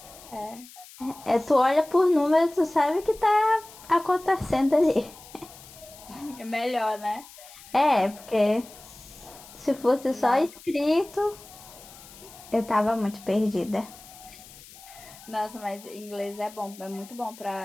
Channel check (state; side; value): noise; left; hiss, 20 dB below the sound